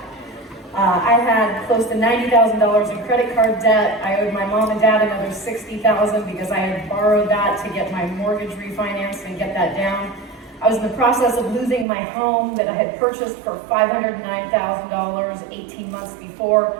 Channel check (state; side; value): drops out; left; at 11.9 s